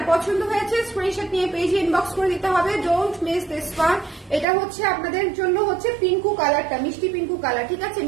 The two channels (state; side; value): drops out; left; at 4.5 s